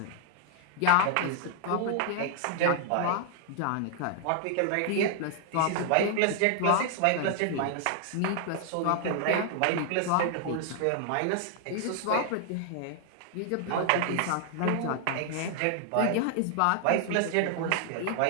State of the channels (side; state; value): both; different; correlation 0.00